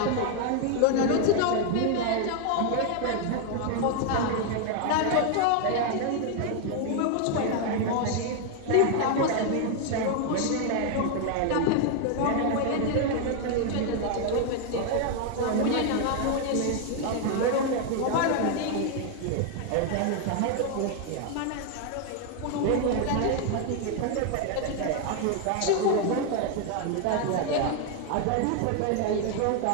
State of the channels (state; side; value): different; both; correlation 0.00